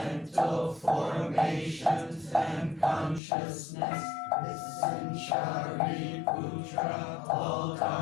formations, and consciousness. Listen, Shariputra, all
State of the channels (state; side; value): drops out; right; at 3.2 s